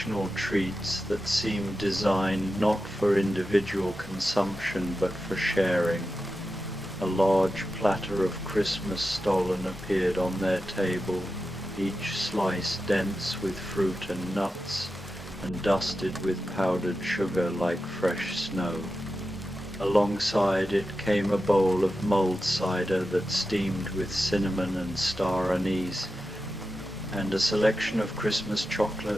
treats that seemed designed not for individual consumption but for sharing. A large platter of Christmas stollen appeared on their table, each slice dense with fruit and nuts, and dusted with powdered sugar like fresh snow. Alongside it came a bowl of mulled cider that steamed with cinnamon and star anise, and a selection of Christmas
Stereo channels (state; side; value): normal; both; correlation 0.91